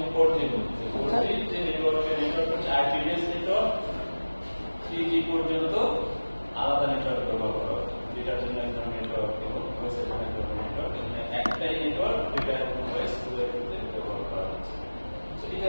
4G-র মধ্যে 4G যে নেটওয়ার্ক হচ্ছে IP বেসড নেটওয়ার্ক 3G পর্যন্ত আলাদা নেটওয়ার্ক ব্যবহার করা হতো ডেটার জন্য এক ধরনের নেটওয়ার্ক এবং ভয়েসের জন্য এক ধরনের নেটওয়ার্ক একটাই নেটওয়ার্ক ডেটা এবং ভয়েস ব্যবহার করা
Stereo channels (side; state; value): both; inverted; correlation -1.00